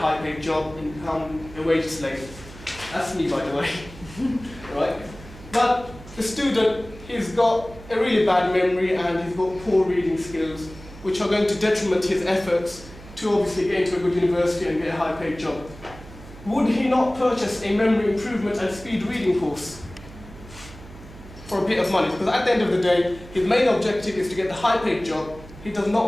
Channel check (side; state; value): right; noise; hum, 17 dB below the sound